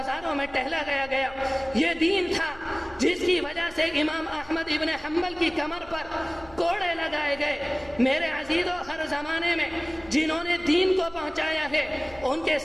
میں ٹہلا گیا۔ یہ دین تھا جس کی وجہ سے امام احمد ابن حنبل کی کمر پر کوڑے لگائے گئے۔ میرے عزیزو، ہر زمانے میں جنہوں نے دین کو پہنچایا ہے ان کے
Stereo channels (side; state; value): left; noise; hum, 22 dB below the sound